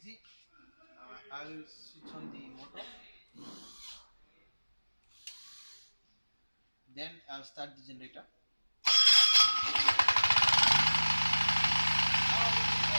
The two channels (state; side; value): inverted; both; correlation -1.00